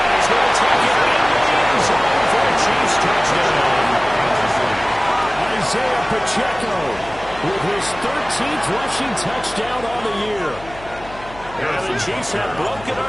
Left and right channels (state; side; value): noise; left; hum, 18 dB below the sound